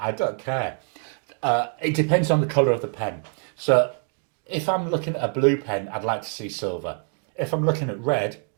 don't care. It depends on the colour of the pen. So if I'm looking at a blue pen, I'd like to see silver. If I'm looking at red,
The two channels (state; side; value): quieter; left; 39.8 dB